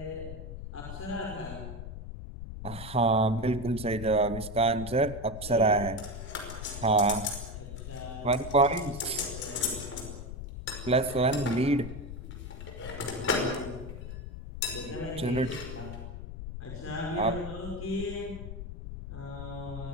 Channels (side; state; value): left; noise; rumble, 9 dB below the sound